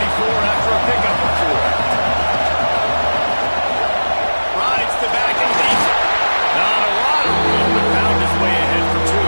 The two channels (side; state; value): both; inverted; correlation -1.00